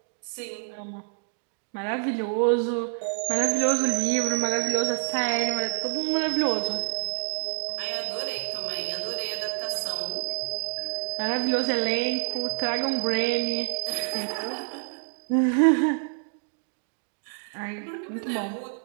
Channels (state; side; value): silent; left; 60 dB below the other